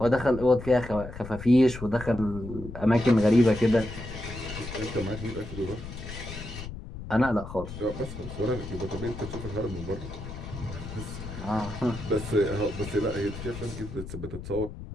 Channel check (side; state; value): left; noise; rumble, 10 dB below the sound